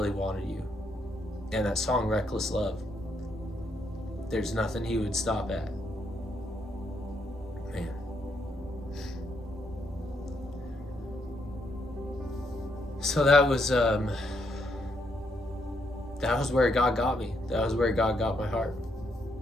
wanted you. And that song Reckless Love, there's nothing he would stop at. Man. So that was where God got me. That was where God got my heart.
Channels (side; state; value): both; normal; correlation 0.76